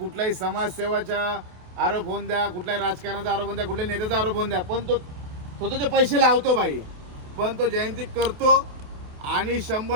समाजसेवाचा आरोप होऊन द्या, कुठल्याही राजकारणाचा आरोप होऊन द्या, कुठल्याही नेत्याचा आरोप होऊन द्या, पण तो स्वतःचे पैसे लावतो बाई, पण तो जयंती करतो आणि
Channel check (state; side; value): late; left; 28 ms